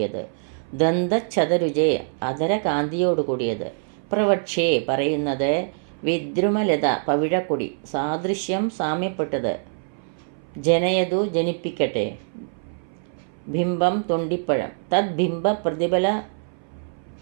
ദന്തച്ഛതരുജേ അധരകാന്തിയോട് കൂടിയത്, പ്രവക്ഷേ പറയുന്നത്, വിദ്രുമലത പവിഴക്കൊടി, സാദൃശ്യം സാമ്യപ്പെട്ടത്, ജനയതു ജനിപ്പിക്കട്ടെ, ബിംബം തൊണ്ടിപ്പഴം, തദ്ബിംബ പ്രതിഫല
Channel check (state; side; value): silent; left; 61 dB below the other